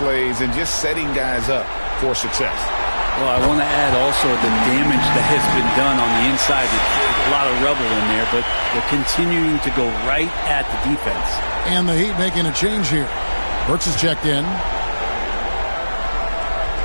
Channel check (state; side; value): inverted; both; correlation -1.00